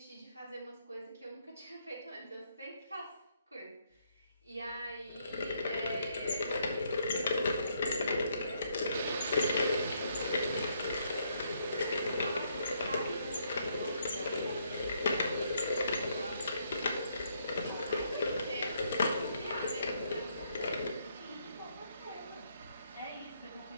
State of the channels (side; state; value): both; inverted; correlation -0.72